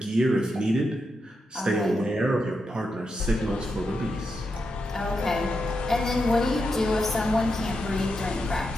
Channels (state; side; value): normal; both; correlation 0.85